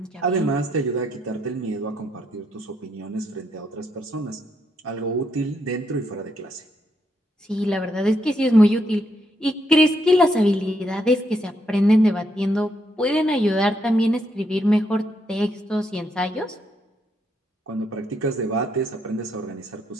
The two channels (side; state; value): both; normal; correlation 0.77